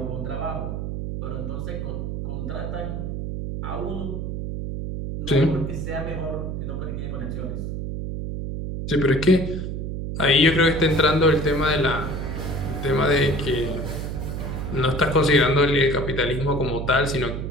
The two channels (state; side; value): noise; right; hum, 4 dB below the sound